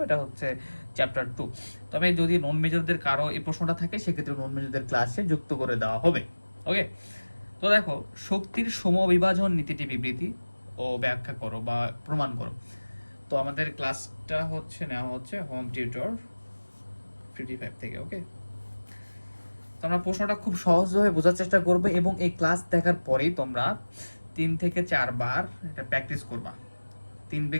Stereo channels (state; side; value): inverted; both; correlation -1.00